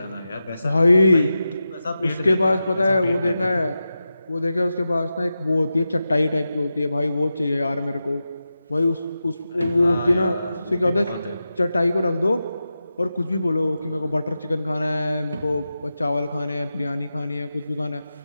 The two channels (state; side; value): inverted; both; correlation -0.91